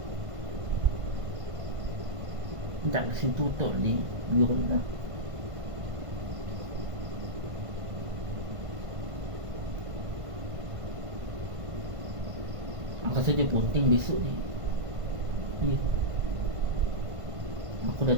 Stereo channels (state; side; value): late; left; 1.5 ms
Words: Tak kasi tutup ni biru dah. Aku rasa dia bunting besok ni. Ya. Aku dah